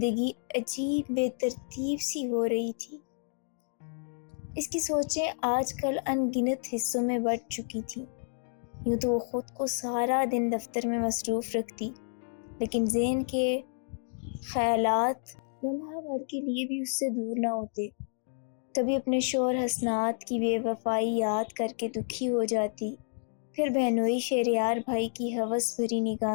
عجیب بے ترتیب سی ہو رہی تھی۔ اس کی سوچیں آج کل ان گنت حصوں میں بٹ چکی تھیں۔ یوں تو وہ خود کو سارا دن دفتر میں مصروف رکھتی، لیکن ذہن کے خیالات لمحہ بھر کے لیے بھی اس سے دور نہ ہوتے۔ کبھی اپنے شوہر حسنات کی بے وفائی یاد کر کے دکھی ہو جاتی، پھر بہنوئی شہریار بھائی کی ہوس بھری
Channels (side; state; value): right; silent; digital silence